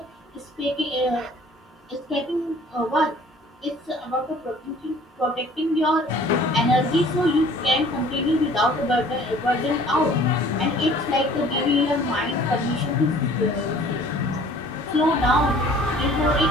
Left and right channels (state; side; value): normal; both; correlation 0.52